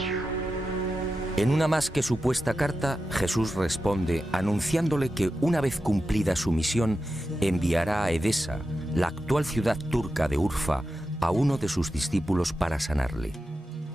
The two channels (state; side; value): normal; both; correlation 0.91